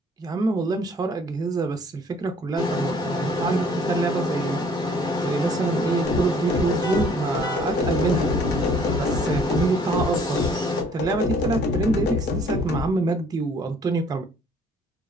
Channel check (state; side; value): normal; both; correlation 0.58